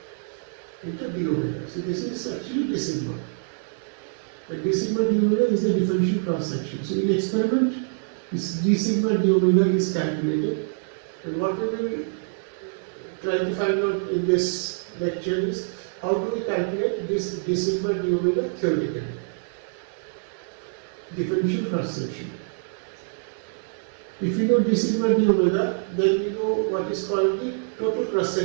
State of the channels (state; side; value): silent; left; 60 dB below the other